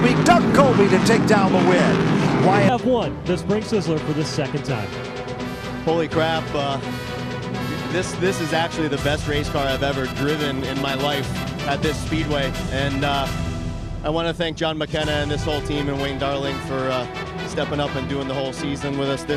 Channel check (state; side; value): identical; both; correlation 1.00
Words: Doug Colby to take down the win. We have won the Spring Sizzler for the second time. Holy crap. This is actually the best race car I've ever driven in my life at this speedway, and I want to thank John McKenna and this whole team and Wayne Darling for stepping up and doing the whole season with us